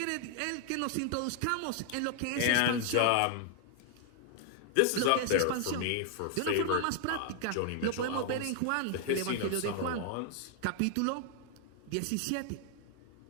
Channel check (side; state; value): both; different; correlation 0.00